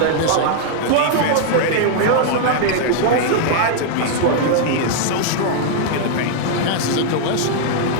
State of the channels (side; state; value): both; different; correlation -0.01